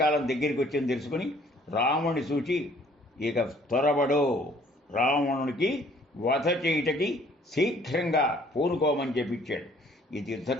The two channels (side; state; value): both; normal; correlation 0.58